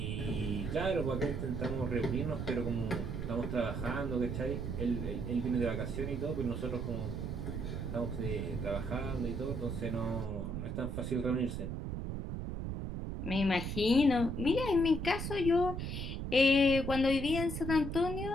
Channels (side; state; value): right; noise; rumble, 4 dB below the sound